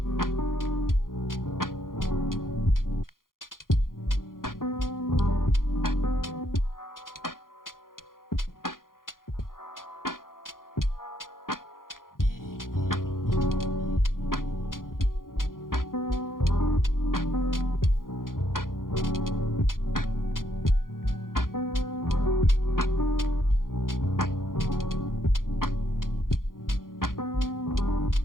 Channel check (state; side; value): late; right; 0.91 ms